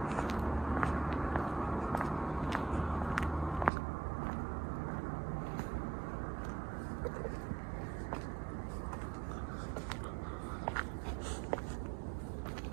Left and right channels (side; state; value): left; drops out; at 3.7 s